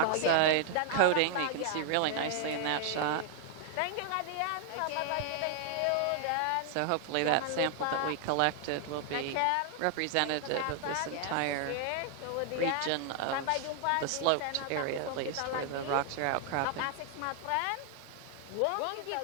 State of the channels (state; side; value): different; both; correlation 0.00